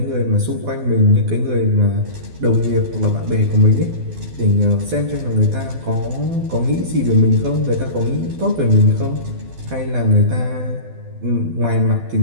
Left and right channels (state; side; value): late; left; 12 ms